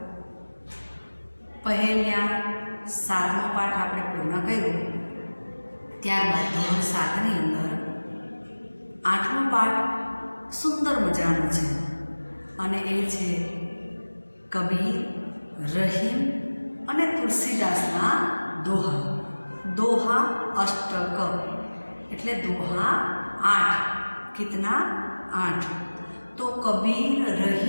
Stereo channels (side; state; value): both; inverted; correlation -1.00